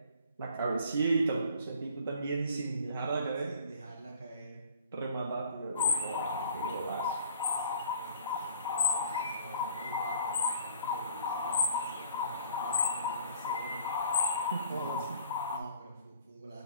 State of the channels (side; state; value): both; inverted; correlation -0.53